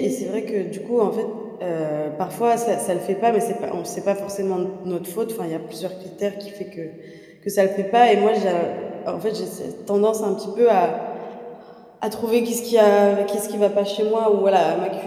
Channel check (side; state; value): both; identical; correlation 1.00